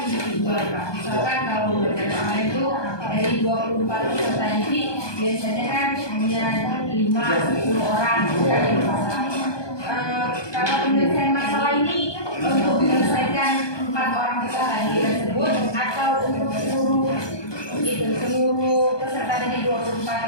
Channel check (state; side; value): late; right; 1.2 ms